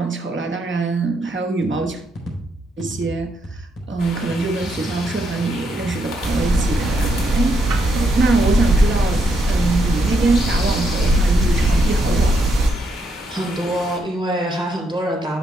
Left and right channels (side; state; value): both; normal; correlation 0.78